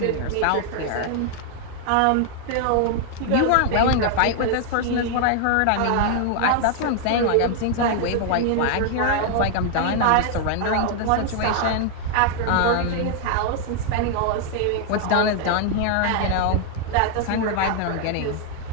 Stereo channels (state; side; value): different; both; correlation 0.00